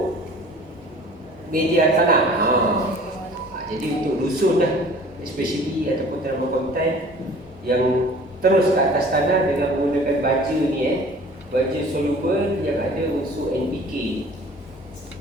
media tanah. Jadi untuk dusun lah, especially ataupun tanaman konten yang terus ke atas tanah dengan menggunakan baja ni baja soluble yang ada unsur NPK.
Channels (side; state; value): both; normal; correlation 0.48